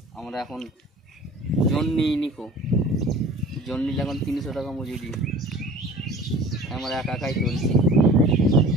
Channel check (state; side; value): normal; both; correlation 0.44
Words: আমরা এখন জন্যি নিকো, জন্যিটা এখন 300 টাকা মজুরি। আমরা একাই চলছি।